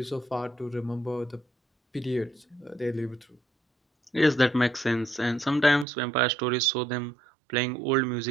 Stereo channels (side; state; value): left; drops out; at 5.9 s